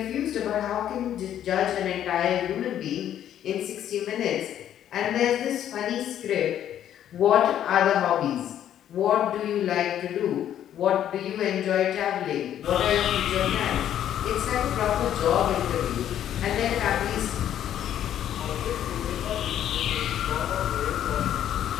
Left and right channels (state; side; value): quieter; right; 10.7 dB